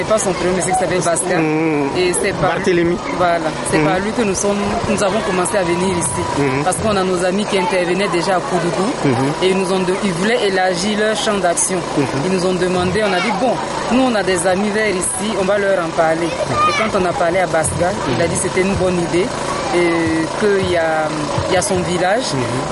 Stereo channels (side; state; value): both; identical; correlation 1.00